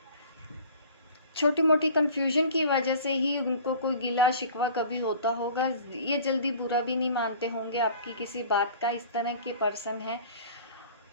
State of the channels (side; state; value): both; inverted; correlation -0.46